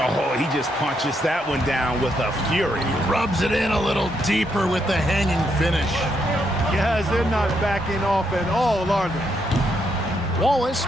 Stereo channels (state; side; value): normal; both; correlation 0.77